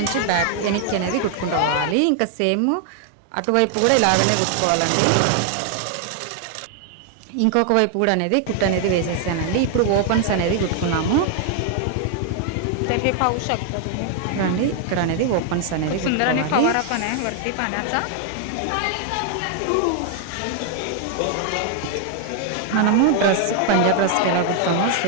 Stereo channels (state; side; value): different; both; correlation 0.00